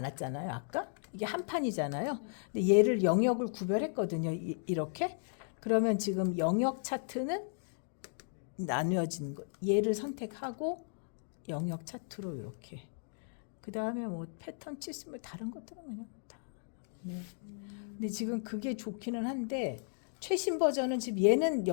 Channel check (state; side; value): silent; right; digital silence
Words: 아까 이게 한 판이잖아요. 근데 얘를 영역을 구별했거든요. 이렇게. 그러면 지금 영역 차트는 나누어진 거. 얘를 선택하고 영역 차트로 이렇게. 그 다음에 뭐 패턴 치스면 다른 것들은 그냥 다. 네. 근데 지금 그게 좋기는 한데 최신 버전은 지금 얘는